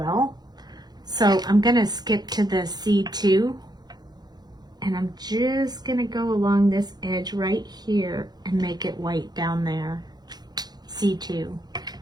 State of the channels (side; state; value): left; late; 0.20 ms